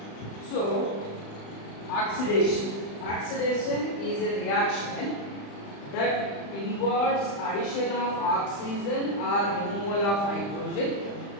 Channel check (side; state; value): right; late; 35 ms